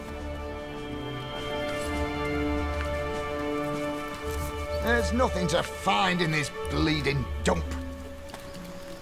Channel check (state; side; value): identical; both; correlation 1.00